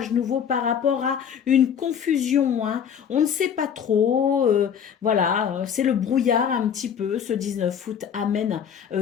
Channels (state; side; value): quieter; right; 8.0 dB